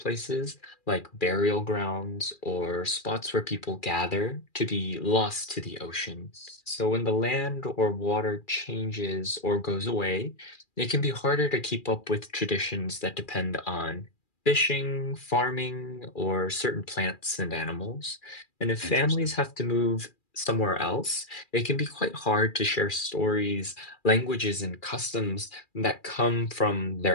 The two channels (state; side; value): late; right; 2.4 ms